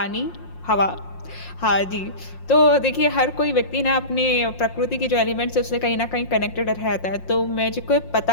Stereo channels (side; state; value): right; late; 5.6 ms